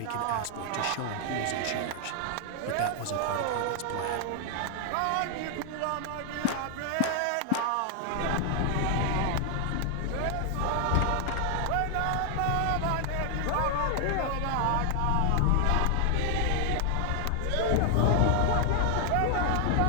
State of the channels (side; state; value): both; different; correlation 0.00